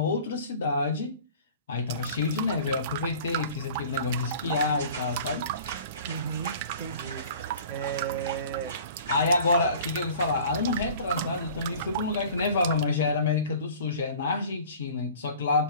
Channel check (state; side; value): inverted; both; correlation -0.45